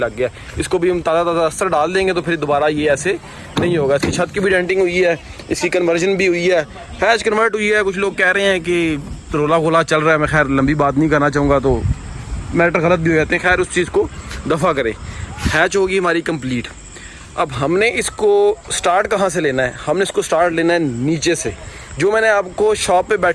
गया। इसको भी हम ताज़ा अस्तर डाल देंगे तो फिर दोबारा ये ऐसे नहीं होगा। इसकी छत की भी डेंटिंग हुई है, इसकी कन्वर्जन भी हुई है, हैच कन्वर्ट हुई है। कुछ लोग कह रहे हैं कि रोला गोला चल रहा है, मैं खैर लंबी बात नहीं करना चाहूँगा तो मैटर गलत भी हो जाते हैं। खैर उस चीज़ को दफ़ा करें। हैच होगी हमारी कंप्लीट। अब हमने इसको स्टार्ट कहाँ से लेना है? हमने इसको स्टार्ट लेना है नीचे से। जो मैंने आपको शॉप पे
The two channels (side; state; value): both; identical; correlation 1.00